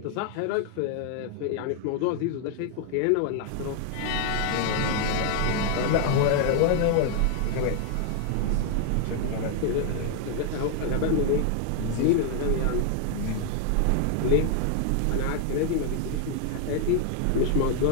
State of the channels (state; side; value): different; both; correlation 0.00